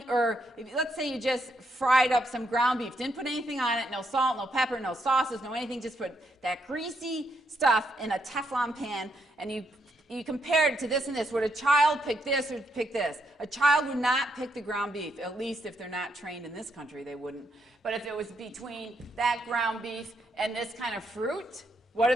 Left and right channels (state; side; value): normal; both; correlation 0.77